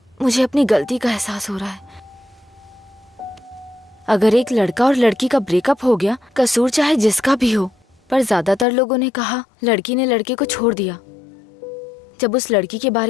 मुझे अपनी गलती का एहसास हो रहा है। अगर एक लड़का और लड़की का ब्रेकअप हो गया, कसूर चाहे जिसका भी हो, पर ज्यादातर लोगों ने कहा लड़की ने लड़के को छोड़ दिया। जब उस लड़की के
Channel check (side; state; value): right; drops out; at 8.7 s